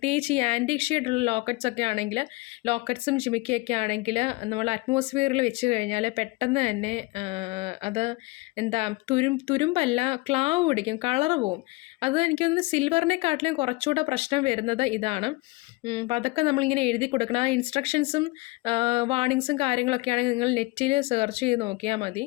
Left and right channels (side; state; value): right; quieter; 23.1 dB